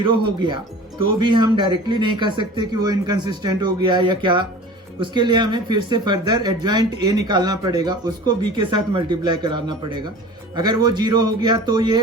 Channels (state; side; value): normal; both; correlation 0.40